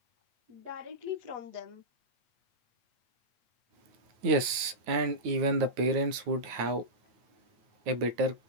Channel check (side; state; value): left; late; 9.3 ms